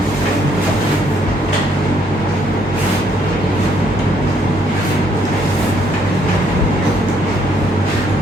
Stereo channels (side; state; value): both; normal; correlation 0.68